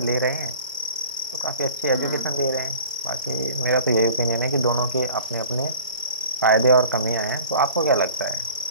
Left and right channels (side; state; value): both; inverted; correlation -0.45